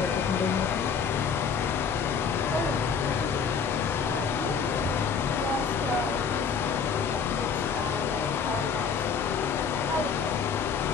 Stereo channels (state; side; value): quieter; right; 6.2 dB